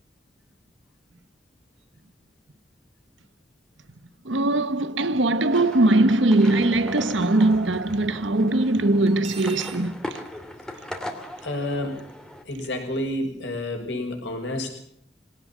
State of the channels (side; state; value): both; normal; correlation 0.57